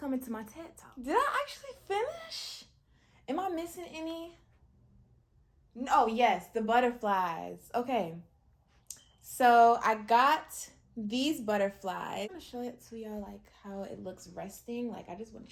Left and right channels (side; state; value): both; identical; correlation 1.00